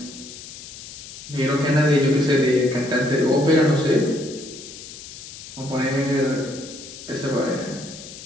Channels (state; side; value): noise; left; hiss, 14 dB below the sound